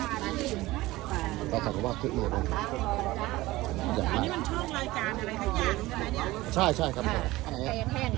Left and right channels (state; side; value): quieter; left; 18.7 dB